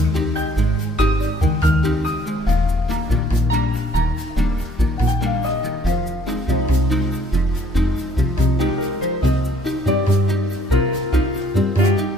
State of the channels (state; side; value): normal; both; correlation 0.60